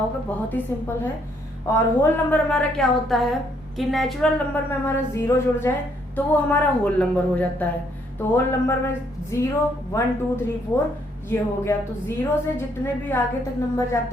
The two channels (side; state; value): both; normal; correlation 0.69